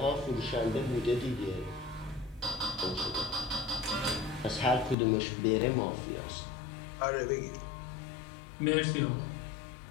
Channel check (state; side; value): drops out; right; at 5.0 s